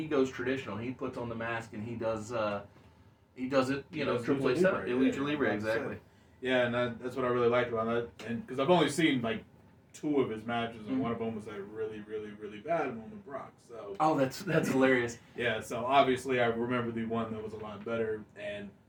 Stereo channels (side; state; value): both; identical; correlation 1.00